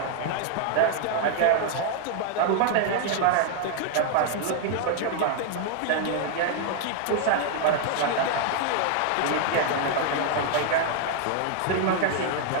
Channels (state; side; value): different; both; correlation 0.00